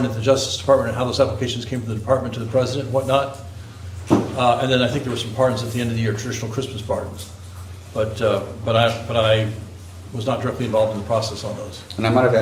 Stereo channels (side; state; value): both; identical; correlation 1.00